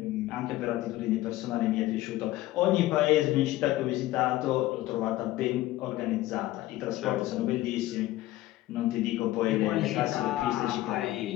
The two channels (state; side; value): quieter; right; 16.3 dB